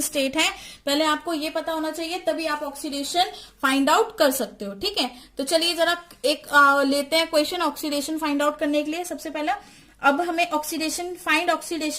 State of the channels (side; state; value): both; identical; correlation 1.00